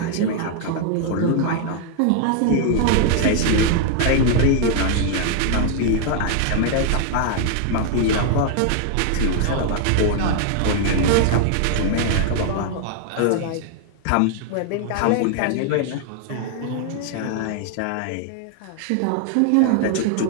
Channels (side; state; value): both; different; correlation 0.00